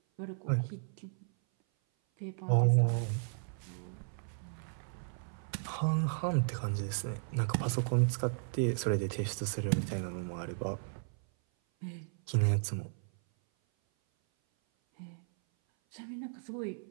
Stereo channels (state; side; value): silent; left; 55 dB below the other